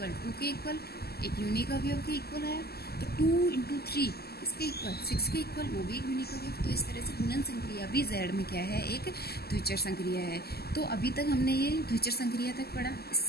2 के इक्वल, एक यूनिक अवयव के इक्वल है। तो 2 × 3 किसके इक्वल, 6 के इक्वल, वो भी एक यूनिक अवयव। तो इस तरह से गुणन संक्रिया भी जेड में क्या है, एक द्विचर संक्रिया है। तो अभी तक हमने ये द्विचर संक्रिया तक पढ़ा।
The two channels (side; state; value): right; late; 0.46 ms